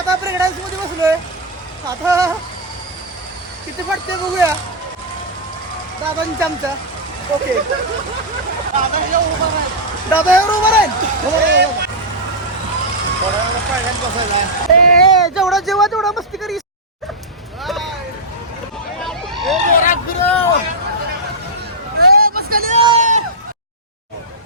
प्रेग्नन्सी मध्ये बसलोय. आता किती पडते बघूया दादांच्या आमच्या. ओके दादा एवढं उभं राहील. जेवढा जेव्हा तेवढा मस्ती करी.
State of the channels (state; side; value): normal; both; correlation -0.07